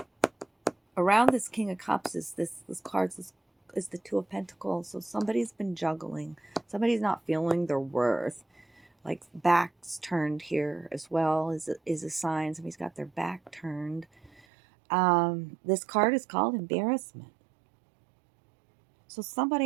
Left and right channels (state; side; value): drops out; left; at 14.5 s